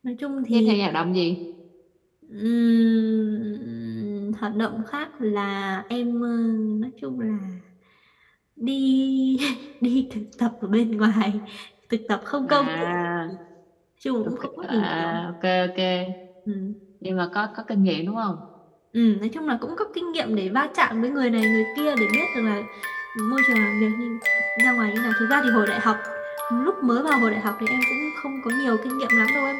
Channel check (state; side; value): identical; both; correlation 1.00